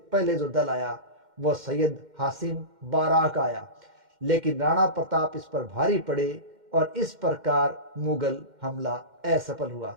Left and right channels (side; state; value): left; late; 2.1 ms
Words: पहले जो दल आया वो सैयद हासिम बाराक का आया, लेकिन राणा प्रताप इस पर भारी पड़े और इस प्रकार मुगल हमला असफल हुआ।